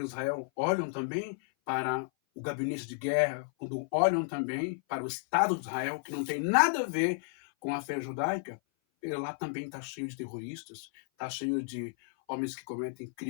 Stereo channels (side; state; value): right; silent; 56 dB below the other